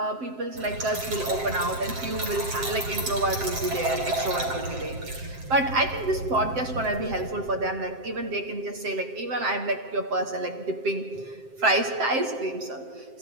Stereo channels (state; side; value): late; left; 7.7 ms